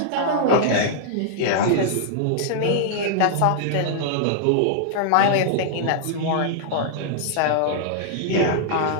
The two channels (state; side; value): different; both; correlation -0.01